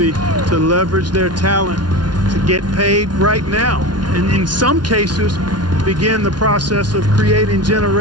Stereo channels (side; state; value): left; late; 0.70 ms